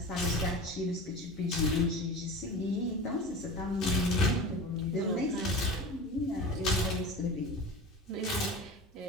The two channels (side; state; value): both; normal; correlation 0.33